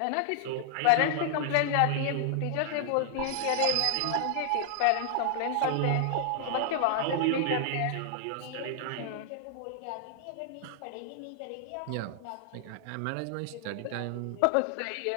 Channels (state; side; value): different; both; correlation 0.00